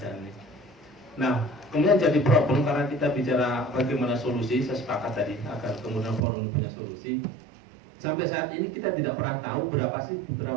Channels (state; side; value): drops out; left; at 6.2 s